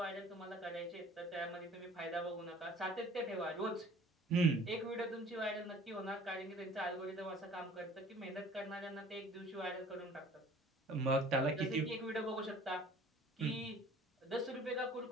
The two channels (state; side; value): normal; both; correlation 0.50